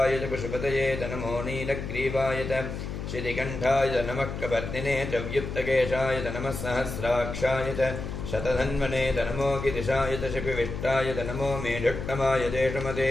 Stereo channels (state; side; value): noise; left; hum, 6 dB below the sound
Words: च पशुपतये च नमो नीलग्रीवाय च श्रीकण्ठाय च नमः कपर्दिने च व्युत्तकेशाय च नमः सहस्राक्षाय च शतधन्वने च नमो गिरिशाय च शिपिविष्टाय च नमो मेढुक्तमाय चेषमते